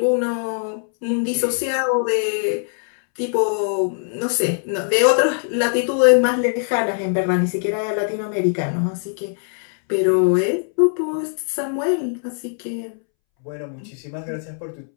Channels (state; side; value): silent; right; 65 dB below the other